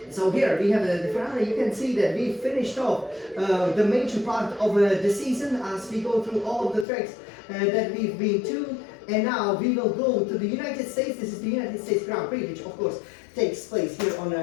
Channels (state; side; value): drops out; right; at 6.9 s